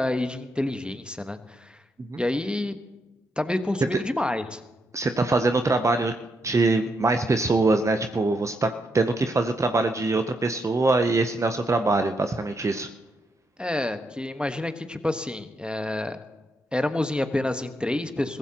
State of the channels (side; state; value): both; normal; correlation 0.80